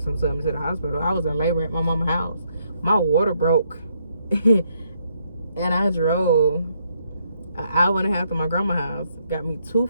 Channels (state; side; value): inverted; both; correlation -0.74